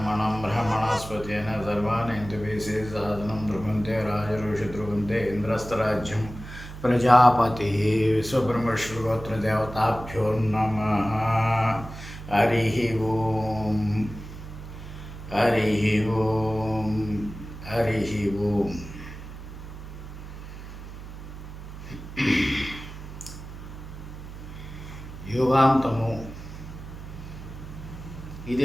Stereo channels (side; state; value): right; noise; hum, 12 dB below the sound